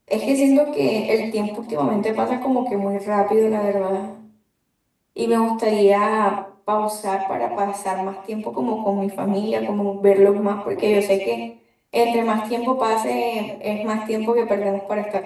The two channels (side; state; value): both; identical; correlation 1.00